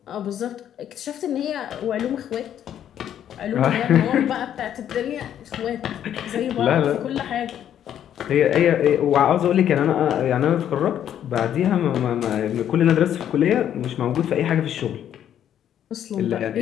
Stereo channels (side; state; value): right; quieter; 10.2 dB